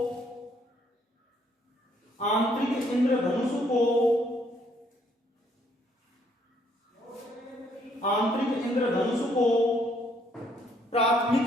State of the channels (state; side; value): normal; both; correlation 0.67